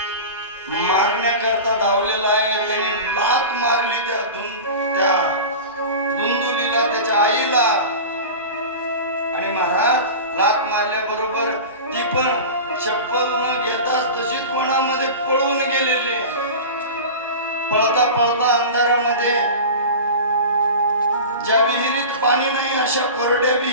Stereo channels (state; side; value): inverted; both; correlation -0.31